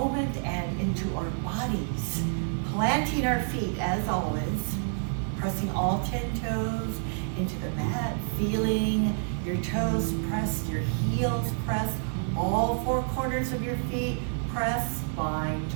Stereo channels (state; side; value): silent; left; digital silence